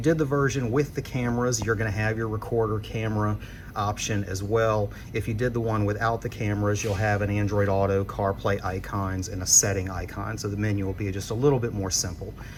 the version with the cameras, you're going to have your recorder camera option as well. If you did the one without the cameras, you'll have an Android Auto, CarPlay icons, and a setting icon. So the menu will be just a little bit more simple.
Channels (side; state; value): both; identical; correlation 1.00